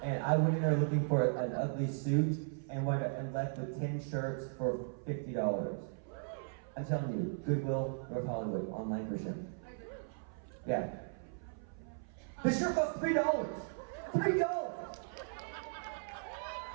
And I went in there looking for an ugly suit and left with 10 shirts for $50. I'm telling you, Goodwill, North Hollywood, on Lankershim. Yeah. The shirt cost $3. $3!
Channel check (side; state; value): left; silent; 53 dB below the other